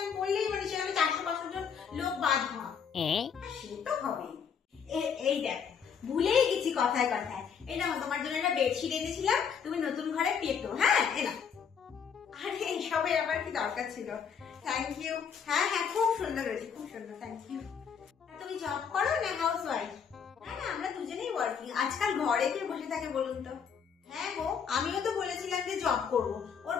করলেই মানে সেখানে 400-500 জন লোক বাদ হয়, সে তো হবেই। এই দেখ ভুলেই গেছি কথায় কথায়, এই না তোমার জন্য একটা বেডশিট এনেছিলাম, তুমি নতুন ঘরে পেতো। হ্যাঁ এনা, আরে এইসবের আবার কি দরকার ছিল? Thank you. হ্যাঁ হ্যাঁ খুব সুন্দর হয়েছে, খুব সুন্দর, থ্যাংক ইউ। তুমি জব করো না হাউস ওয়াইফ? না না আমরা দুজনেই ওয়ার্কিং। আজকাল ঘরে কে বসে থাকে বলুন তো? হ্যাঁ গো আমিও তো বলেছিলাম যে জব করবো, ওর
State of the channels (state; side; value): quieter; right; 6.9 dB